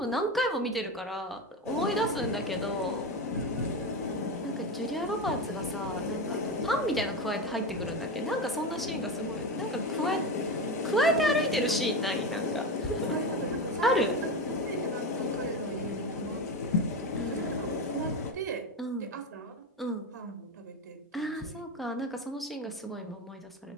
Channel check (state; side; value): normal; both; correlation 0.18